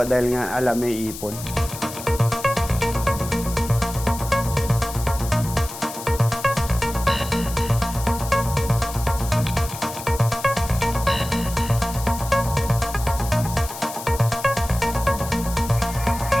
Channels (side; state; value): left; noise; hiss, 11 dB below the sound